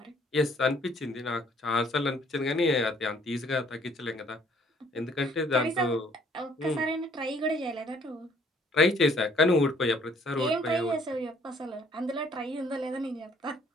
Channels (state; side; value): normal; both; correlation 0.61